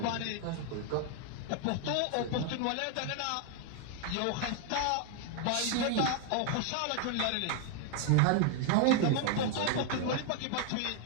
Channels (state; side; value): different; both; correlation 0.00